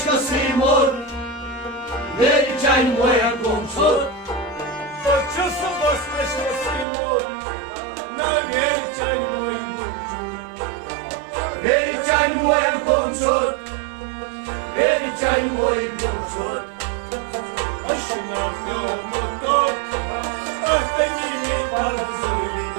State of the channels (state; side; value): drops out; left; at 6.9 s